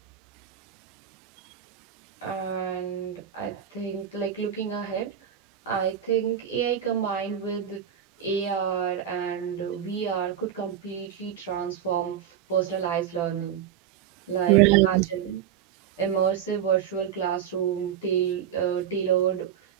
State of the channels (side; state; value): left; quieter; 9.5 dB